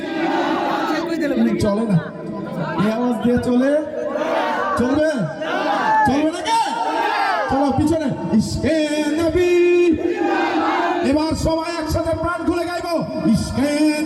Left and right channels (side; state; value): both; identical; correlation 1.00